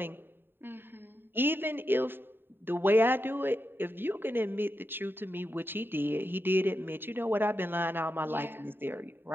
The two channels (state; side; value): late; left; 0.099 ms